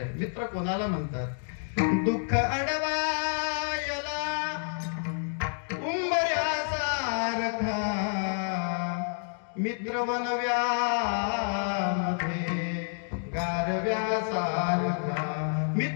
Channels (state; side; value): silent; right; 58 dB below the other